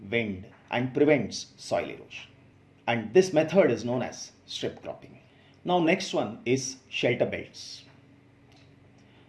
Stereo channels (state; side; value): identical; both; correlation 1.00